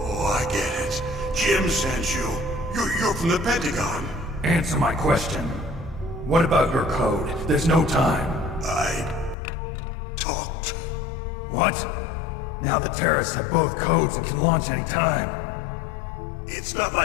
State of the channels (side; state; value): right; drops out; at 9.3 s